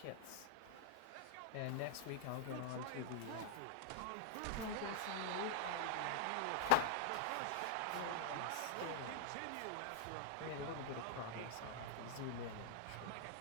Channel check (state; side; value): different; both; correlation -0.01